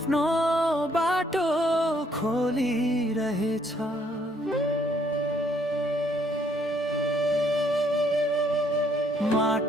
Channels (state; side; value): normal; both; correlation 0.67